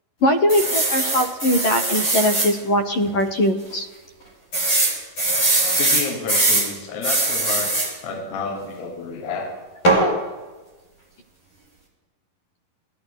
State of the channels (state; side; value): late; right; 11 ms